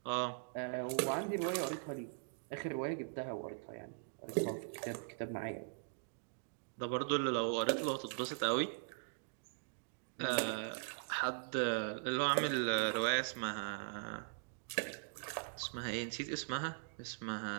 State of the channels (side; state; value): left; silent; digital silence